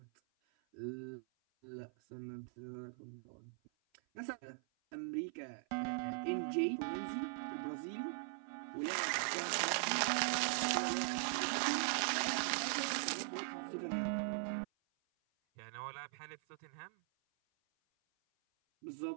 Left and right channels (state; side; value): silent; left; 50 dB below the other